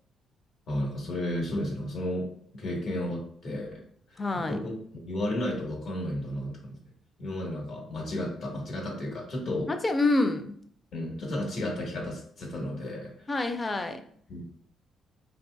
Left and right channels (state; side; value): normal; both; correlation 0.80